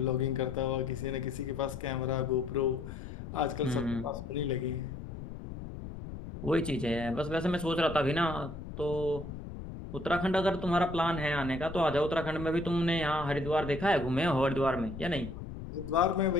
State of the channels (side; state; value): left; noise; rumble, 10 dB below the sound